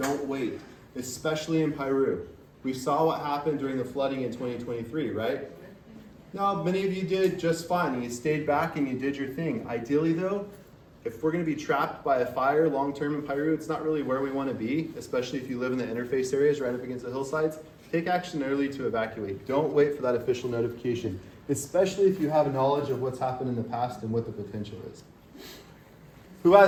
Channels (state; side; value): identical; both; correlation 1.00